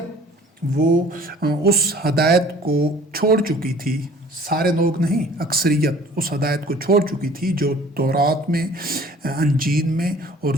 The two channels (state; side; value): normal; both; correlation 0.50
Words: وہ اس ہدایت کو چھوڑ چکی تھی. سارے لوگ نہیں، اکثریت اس ہدایت کو چھوڑ چکی تھی جو تورات میں، انجیل میں اور